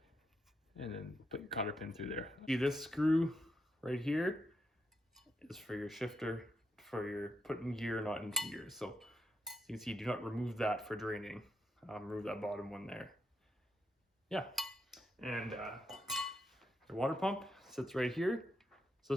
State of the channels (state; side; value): normal; both; correlation 0.81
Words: And then put your cotter pin through there. See, this screw right here is for your shifter, for your putting gear not into gear. So you can see, do not remove that for draining. Remove that bottom one there. Yeah. And your water pump sits right here. So